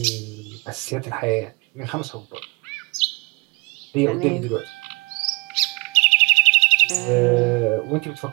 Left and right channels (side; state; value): left; quieter; 28.9 dB